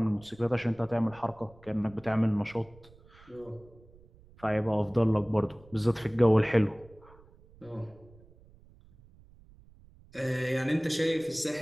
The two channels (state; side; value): noise; right; rumble, 25 dB below the sound